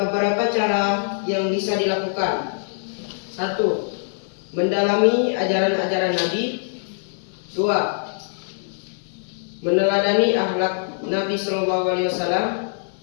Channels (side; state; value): right; silent; digital silence